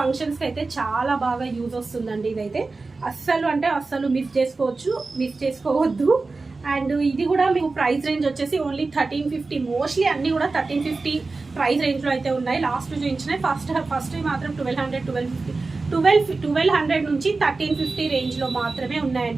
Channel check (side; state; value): left; quieter; 3.8 dB